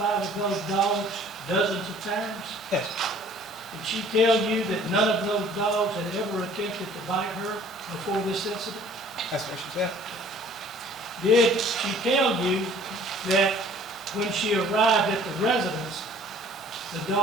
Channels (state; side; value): normal; both; correlation 0.53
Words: of those dogs dozens of times? Yes. Did she tell you that none of those dogs had ever attempted to bite her before this incident? That's what she said. Did she tell you that when she arrived at the residence, the